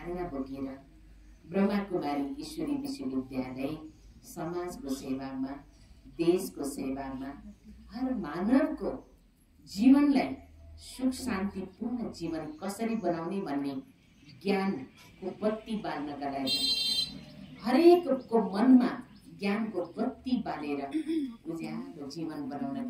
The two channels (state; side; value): identical; both; correlation 1.00